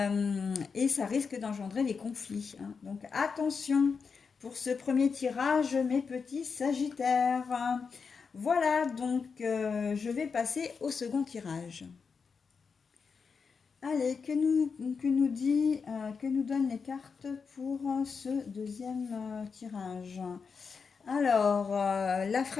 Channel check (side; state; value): right; quieter; 5.5 dB